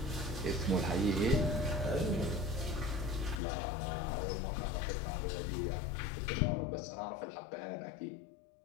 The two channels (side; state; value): right; drops out; at 3.4 s